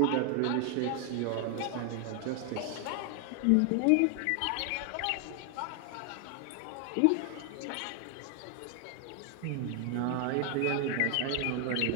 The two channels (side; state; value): both; different; correlation 0.00